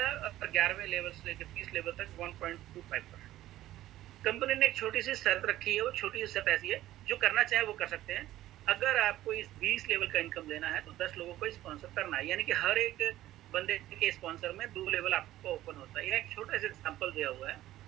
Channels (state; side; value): quieter; left; 14.6 dB